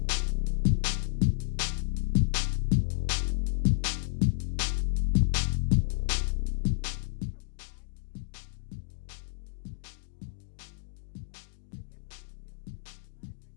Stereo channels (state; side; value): silent; right; digital silence